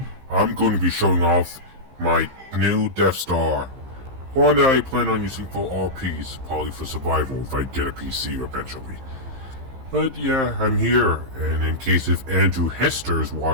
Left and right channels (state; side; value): late; left; 15 ms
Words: I'm going to be showing off my new Death Star. One that I plan on using for RPs, probably for survival if I get a PC eventually. But yeah, I'm here, and in case if Andrew Hester is